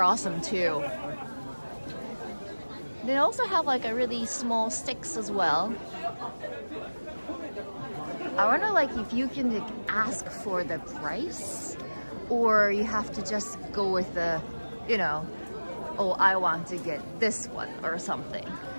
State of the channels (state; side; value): inverted; both; correlation -1.00